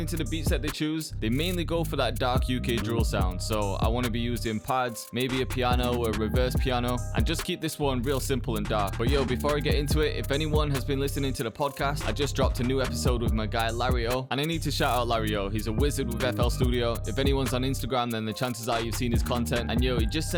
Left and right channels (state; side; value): identical; both; correlation 1.00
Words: to the beats that they choose, they mainly go for that dark UK drill sound, so I want to be using pads, maybe a piano or a reverse piano, and just keep this one real simple and dark. But yo, before I get into it, if anyone has been listening to the podcast, I just dropped a new episode with my guy Larry O, and I need to shout out Larry O. He's a wizard with FL Studio. If anyone's on Instagram, then the chances are you've seen his content, and yo, he just